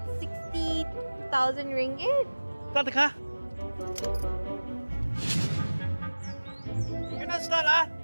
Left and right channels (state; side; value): inverted; both; correlation -1.00